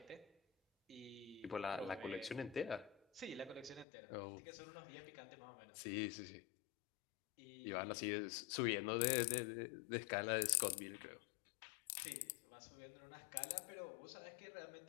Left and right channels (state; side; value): drops out; right; at 3.9 s